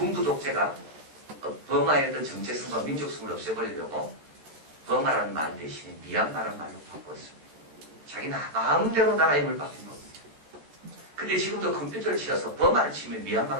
독재가 버마의 어떤 정체성과 민족성을 없애버리려고 버마라는 말 대신에 미얀마라는 말로 바꿨습니다. 자기 마음대로 나라 이름을 바뀐 겁니다. 근데 지금도 컴퓨터를 치어서 버마를 치면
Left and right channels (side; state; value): left; late; 13 ms